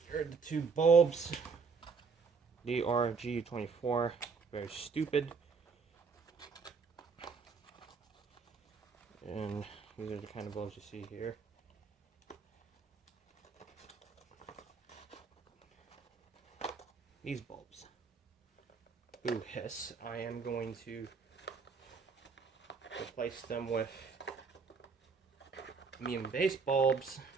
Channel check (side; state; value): left; quieter; 5.2 dB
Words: here are the two bulbs. DRG24, very stupid. And these are the kind of bulbs you see here. These bulbs. Boo hiss. I am going to replace them with medium base bulbs.